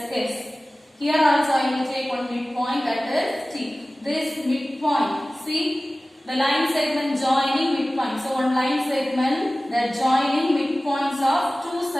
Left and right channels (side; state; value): both; normal; correlation 0.97